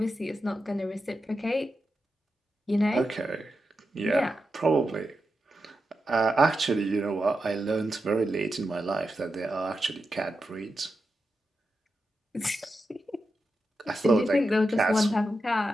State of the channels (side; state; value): both; normal; correlation 0.89